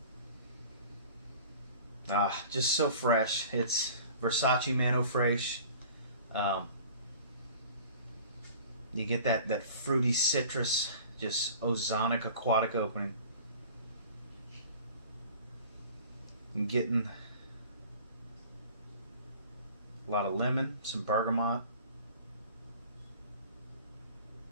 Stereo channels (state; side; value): inverted; both; correlation -0.44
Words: Just so fresh. It's Versace Man fresh. You get that fruity citrus, just ozonic aquatic opening. I'm getting a lot of lemon, some bergamot.